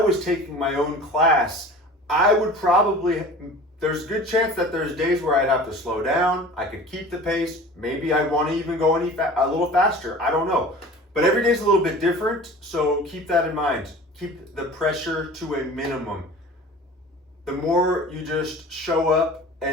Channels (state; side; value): normal; both; correlation 0.40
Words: taking my own class, I would there's a good chance that there's days where I'd have to slow down. I could keep the pace. Maybe I want to even go a little faster. I don't know. But every day's a little bit different, so keep that in mind. Keep the pressure to a minimum. The more you just show up